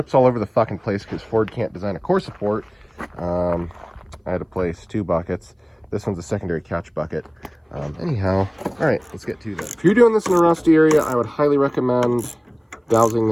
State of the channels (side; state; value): both; identical; correlation 1.00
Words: all over the fucking place because Ford can't design a core support, I had to place 2 buckets. This one's a secondary catch bucket. Anyhow, all right, let's get to that. If you're doing this in a rusty area, I would highly recommend dousing